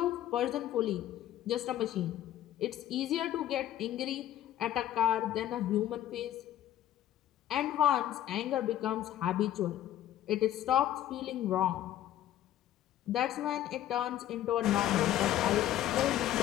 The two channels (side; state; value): right; quieter; 12.4 dB